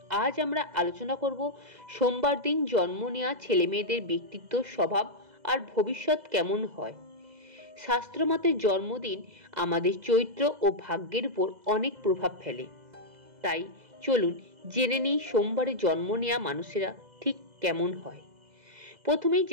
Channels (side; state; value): left; late; 2.0 ms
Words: আজ আমরা আলোচনা করব সোমবার দিন জন্ম নেওয়া ছেলেমেয়েদের ব্যক্তিত্ব, স্বভাব আর ভবিষ্যৎ কেমন হয়। শাস্ত্রমতে জন্মদিন আমাদের চরিত্র ও ভাগ্যের উপর অনেক প্রভাব ফেলে। তাই চলুন জেনে নিই সোমবারে জন্ম নেওয়া মানুষেরা ঠিক কেমন হয়। প্রথমেই